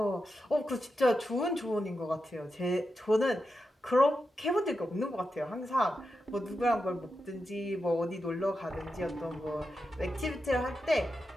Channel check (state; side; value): normal; both; correlation 0.88